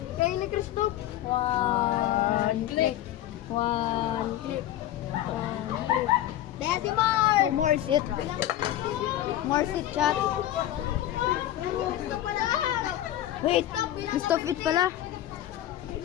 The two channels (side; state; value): right; quieter; 13.2 dB